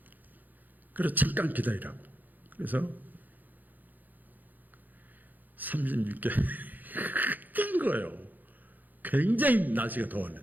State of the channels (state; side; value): late; left; 0.085 ms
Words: 그래서 잠깐 기다리라고. 그래서 36개 뛴 거예요. 굉장히 날씨가